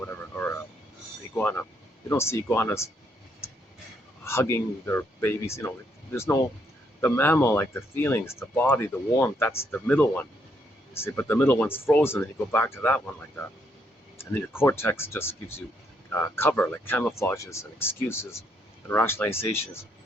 or a iguana. You don't see iguanas hugging their babies. There's no the mammal, like the feelings, the body, the warmth. That's the middle one. See, but the middle one's frozen, and you go back to that one like that. And then your cortex just gives you cover, like camouflages and excuses and rationalizations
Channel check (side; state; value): both; normal; correlation 0.74